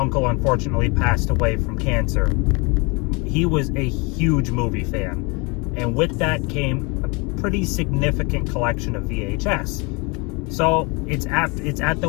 unfortunately passed away from cancer. He was a huge movie fan. And with that came a pretty significant collection of VHS. So it's at the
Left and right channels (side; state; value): right; quieter; 29.0 dB